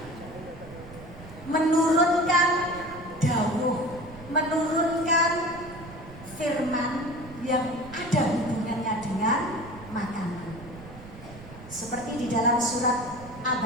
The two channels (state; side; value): noise; right; rumble, 16 dB below the sound